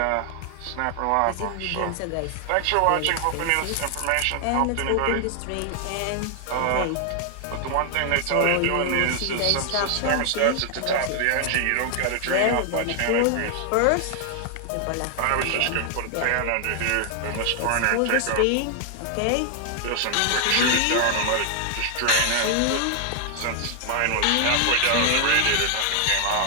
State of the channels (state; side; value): different; both; correlation 0.00